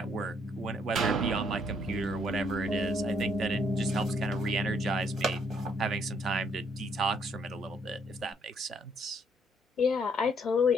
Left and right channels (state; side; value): normal; both; correlation 0.68